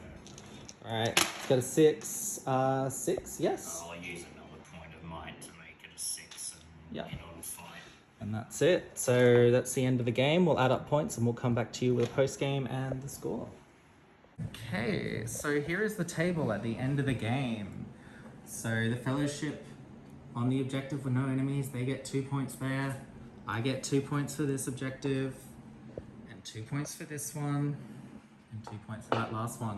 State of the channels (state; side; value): identical; both; correlation 1.00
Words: Alright, it's got a 6. 6, yes. I'll use another point of might to make it a 6 and Yep. get on fight. And that's it. So that's the end of the game. We'll add up points and we'll come back to you with a post game and the score. Okay, so here is the table at the end of the game. So the Fellowship on the objective with no enemies, they get 2 points there. I get 2 points for this objective, and 2 points for this one, and 2 points for that last